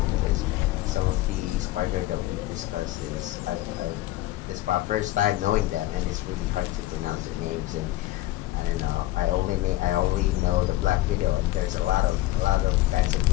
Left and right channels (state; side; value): quieter; right; 16.4 dB